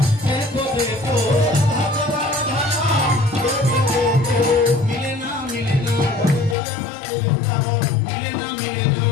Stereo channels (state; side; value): drops out; right; at 6.6 s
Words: দেখো দেখো মিলে না মিলে না মিলে না মিলে